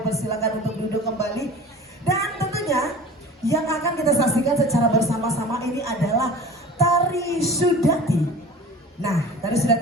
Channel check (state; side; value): normal; both; correlation 0.41